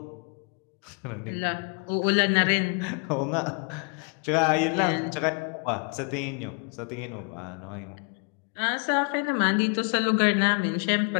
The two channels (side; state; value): right; quieter; 37.2 dB